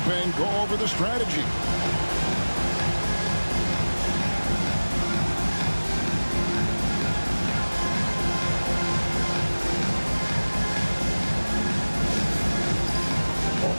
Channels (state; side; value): inverted; both; correlation -1.00